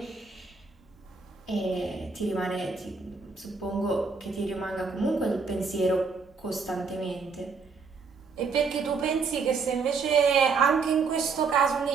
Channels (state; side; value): quieter; left; 4.9 dB